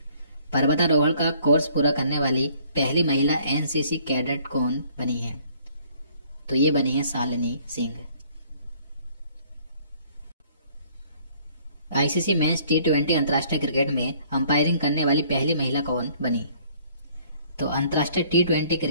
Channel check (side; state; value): both; inverted; correlation -0.59